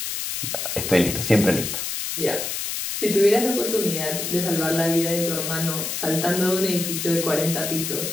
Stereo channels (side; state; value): left; noise; hiss, 3 dB below the sound